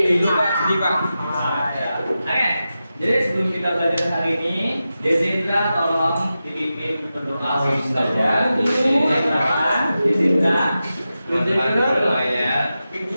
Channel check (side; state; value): both; inverted; correlation -0.92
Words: Itu Pak, sedih Pak. Oke, jadi sebelum kita belajar hari ini, Dezindra tolong dipimpin berdoa saja. Dezindra, Teman-teman ya.